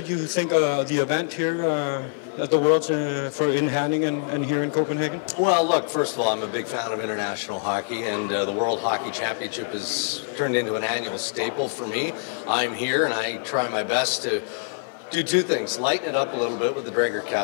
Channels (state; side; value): silent; right; 58 dB below the other